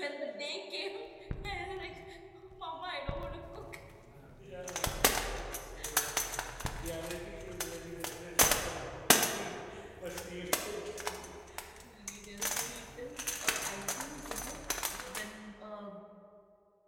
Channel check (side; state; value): both; identical; correlation 1.00